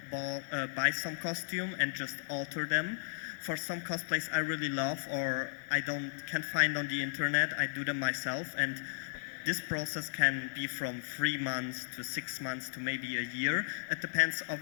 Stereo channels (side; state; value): right; silent; digital silence